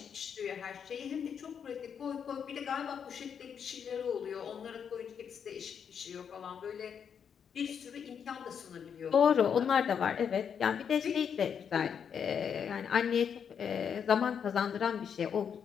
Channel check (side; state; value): right; quieter; 7.4 dB